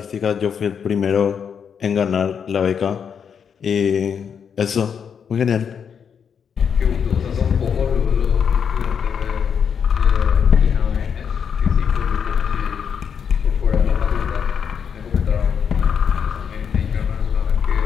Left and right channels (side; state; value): right; quieter; 7.2 dB